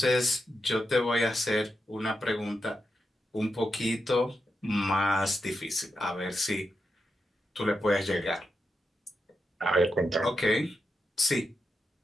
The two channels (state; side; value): normal; both; correlation 0.87